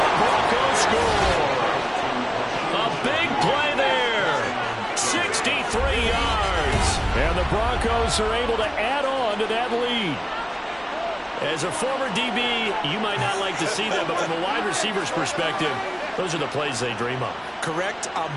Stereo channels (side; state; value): both; identical; correlation 1.00